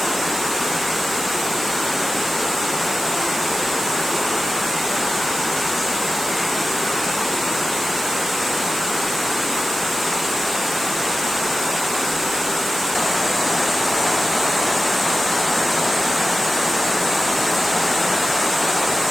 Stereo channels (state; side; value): noise; right; hiss, 6 dB below the sound